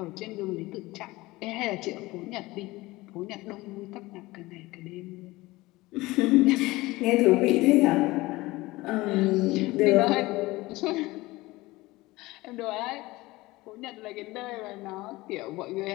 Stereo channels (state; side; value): quieter; right; 20.2 dB